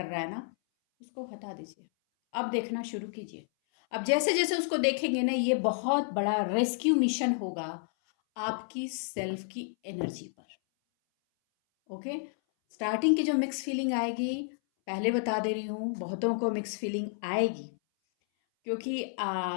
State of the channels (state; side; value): silent; right; 57 dB below the other